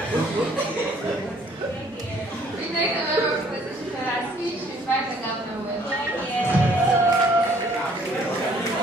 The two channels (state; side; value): normal; both; correlation 0.61